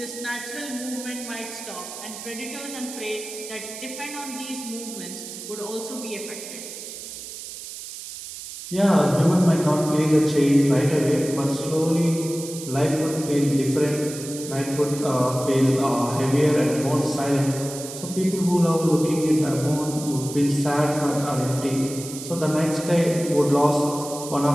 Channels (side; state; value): right; noise; hiss, 11 dB below the sound